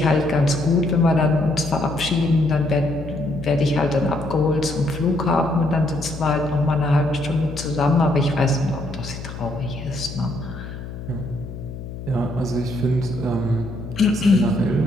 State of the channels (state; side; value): noise; left; hum, 10 dB below the sound